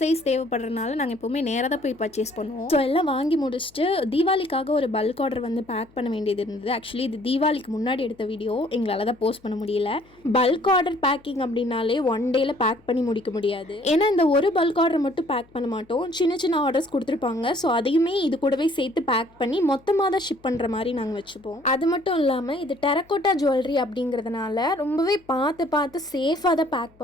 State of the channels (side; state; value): left; noise; hum, 30 dB below the sound